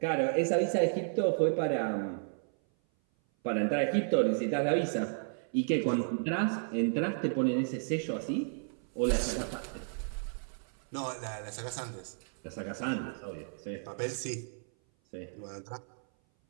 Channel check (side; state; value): left; silent; 56 dB below the other